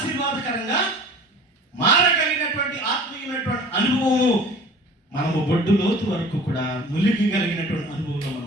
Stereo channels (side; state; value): both; normal; correlation 0.44